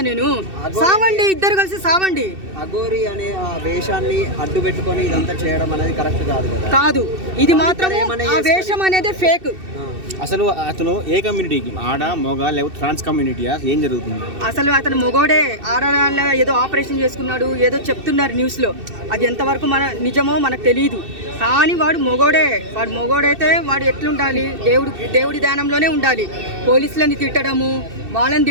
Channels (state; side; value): late; left; 2.6 ms